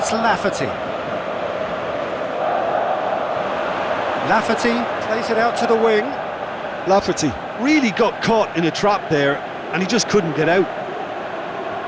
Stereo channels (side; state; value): both; identical; correlation 1.00